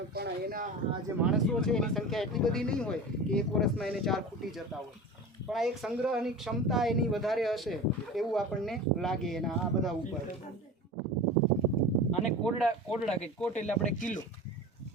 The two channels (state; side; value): normal; both; correlation 0.32